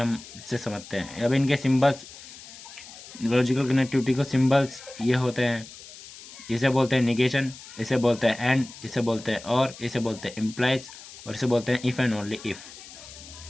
इससे समझते हैं। अब इनके सिंबल्स, लॉजिकल कनेक्टिविटी को सिंबल्स ये होते हैं, इसे बोलते हैं निगेशन, इसे बोलते हैं एंड, इसे बोलते हैं और, इसे बोलते हैं इम्प्लाइज और इसे बोलते हैं इफ़ एंड ओनली इफ़।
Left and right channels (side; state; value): left; noise; hiss, 17 dB below the sound